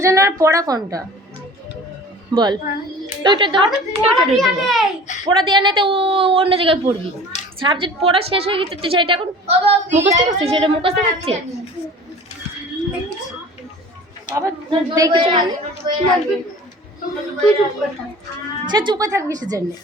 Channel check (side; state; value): both; normal; correlation 0.43